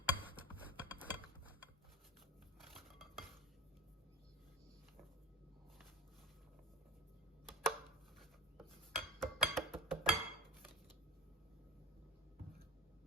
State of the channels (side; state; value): both; normal; correlation 0.24